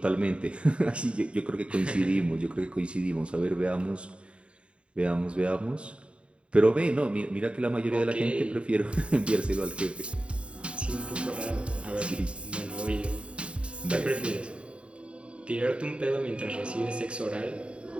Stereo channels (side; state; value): left; late; 0.057 ms